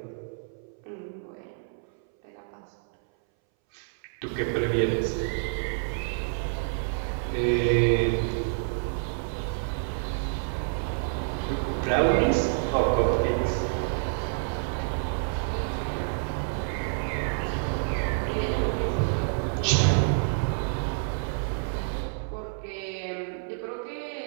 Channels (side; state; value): left; silent; 59 dB below the other